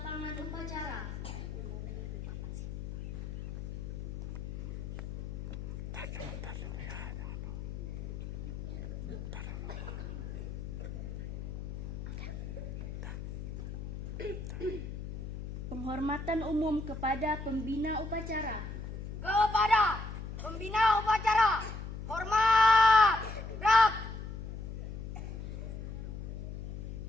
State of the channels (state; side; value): noise; left; hum, 7 dB below the sound